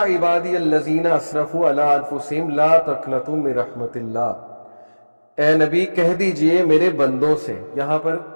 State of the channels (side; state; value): both; inverted; correlation -1.00